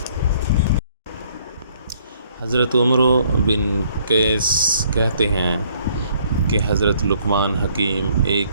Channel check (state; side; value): inverted; both; correlation -0.63